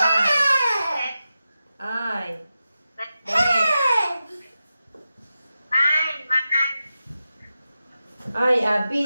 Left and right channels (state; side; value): inverted; both; correlation -0.91